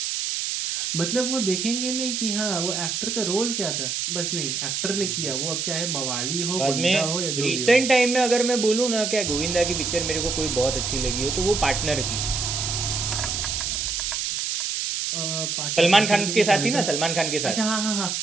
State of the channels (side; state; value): right; noise; hiss, 1 dB below the sound